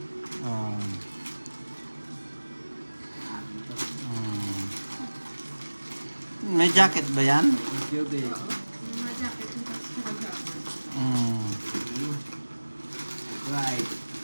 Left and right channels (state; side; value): inverted; both; correlation -1.00